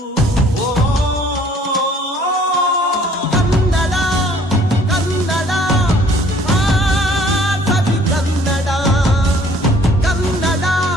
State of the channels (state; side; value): normal; both; correlation 0.57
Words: ಕನ್ನಡ ಕನ್ನಡ ಸವಿ ಕನ್ನಡ, ಕನ್ನಡ